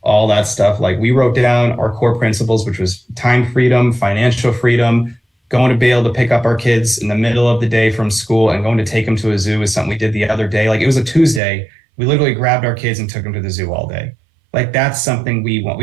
all that stuff. Like, we wrote down our core principles, which was time freedom, financial freedom, going to be able to pick up our kids in the middle of the day from school and going to take them to a zoo is something we did the other day. Like, it was a Tuesday. We literally grabbed our kids and took them to the zoo all day. Like, that's something we want.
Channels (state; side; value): drops out; left; at 11.4 s